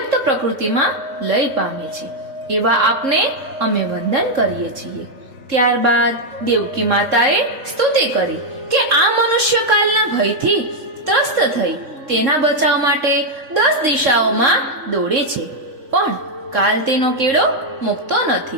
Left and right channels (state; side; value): late; left; 3.7 ms